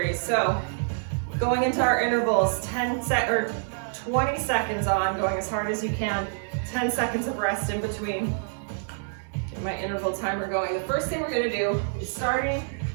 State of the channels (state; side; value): silent; left; 60 dB below the other